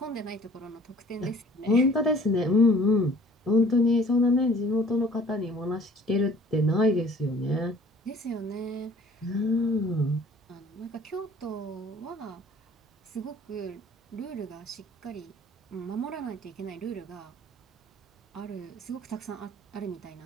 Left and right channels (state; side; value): normal; both; correlation 0.53